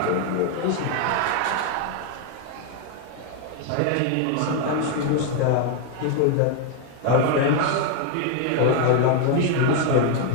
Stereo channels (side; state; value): both; different; correlation 0.01